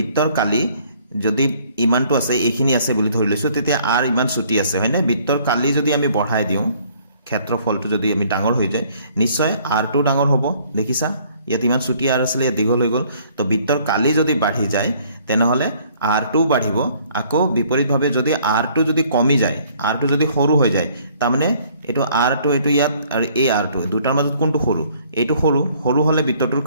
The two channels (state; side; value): inverted; both; correlation -0.60